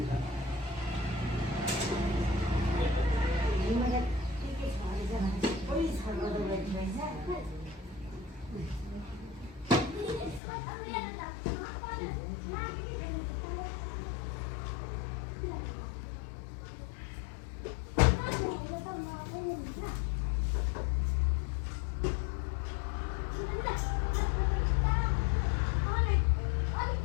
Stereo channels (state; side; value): drops out; right; at 10.4 s